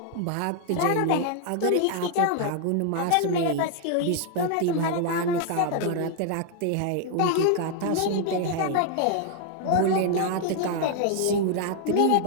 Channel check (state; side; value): different; both; correlation 0.00